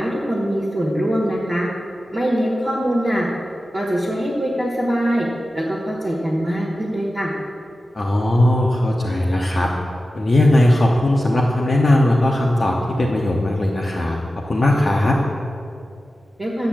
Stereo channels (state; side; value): normal; both; correlation 0.93